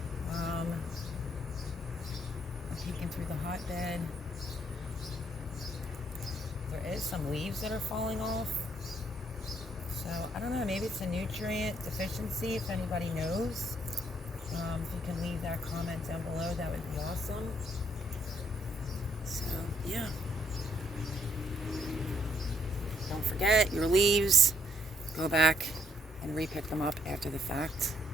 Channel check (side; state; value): both; normal; correlation 0.70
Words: I'm peeking through the hotbed. There is some leaves that are falling off. So, I don't know, maybe it's a nutrient deficiency, if anybody knows. If you can leave that comment down below, that would be awesome. So, yeah. Don't forget your leaves. Go back and repick them up after the fact.